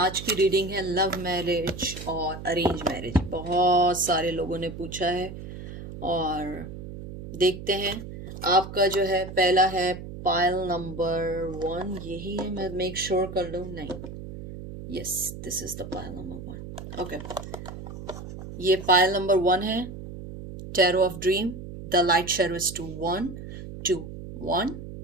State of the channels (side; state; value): right; noise; hum, 11 dB below the sound